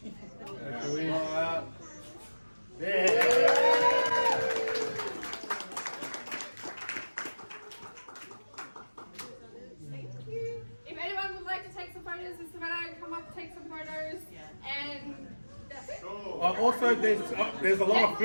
Hooray! Hooray! If anyone would like to take some photos with Savannah, come up, take some photos, and that's it. Also, there's a lot of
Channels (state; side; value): inverted; both; correlation -1.00